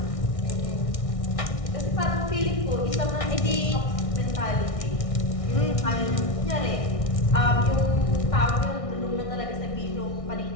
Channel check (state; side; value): late; right; 1.6 ms